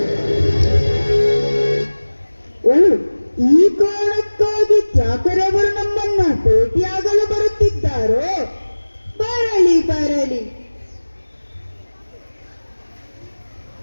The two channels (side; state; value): both; inverted; correlation -1.00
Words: ಈ ಕಾರಣಕ್ಕಾಗಿ ತ್ಯಾಕರೆ ಅವರು ನಮ್ಮನ್ನ ಭೇಟಿಯಾಗಲು ಬರುತ್ತಿದ್ದಾರೋ? ಬರಲಿ ಬರಲಿ.